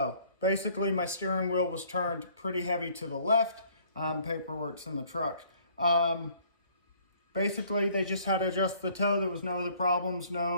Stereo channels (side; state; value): both; inverted; correlation -0.59